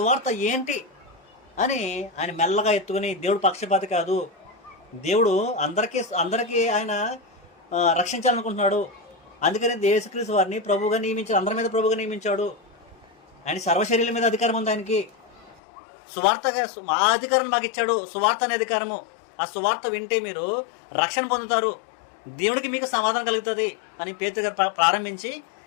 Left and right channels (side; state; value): right; drops out; at 15.6 s